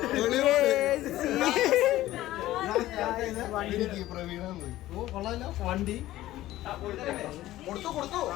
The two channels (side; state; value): right; quieter; 15.3 dB